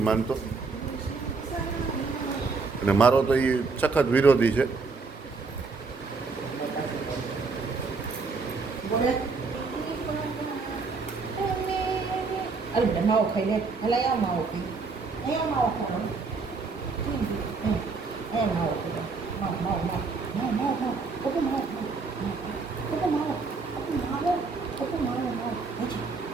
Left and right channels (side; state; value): left; quieter; 4.3 dB